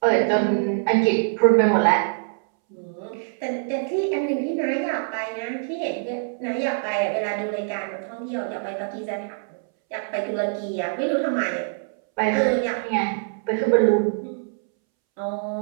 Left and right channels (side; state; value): left; silent; 63 dB below the other